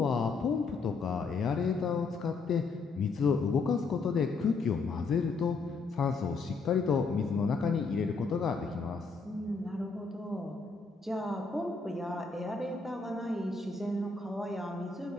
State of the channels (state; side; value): quieter; right; 4.3 dB